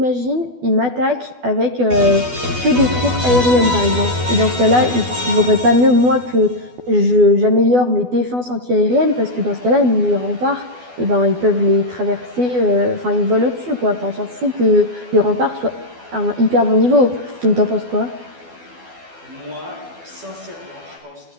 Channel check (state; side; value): late; left; 12 ms